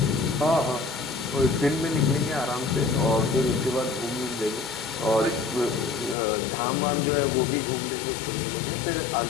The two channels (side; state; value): right; drops out; at 6.2 s